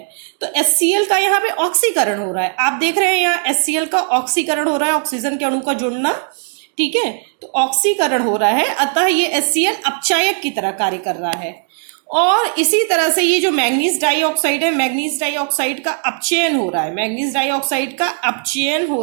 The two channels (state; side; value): silent; left; 64 dB below the other